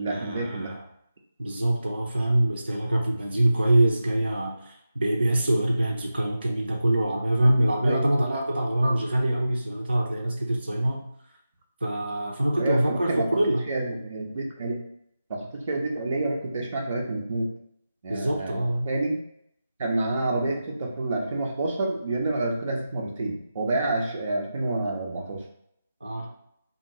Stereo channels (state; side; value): inverted; both; correlation -0.92